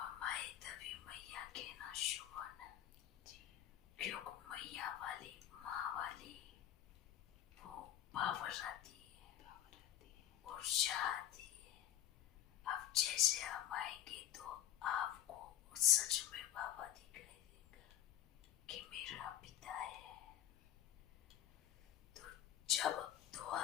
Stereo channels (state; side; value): quieter; right; 11.5 dB